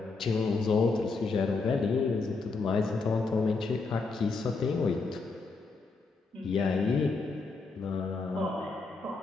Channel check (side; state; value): right; quieter; 4.1 dB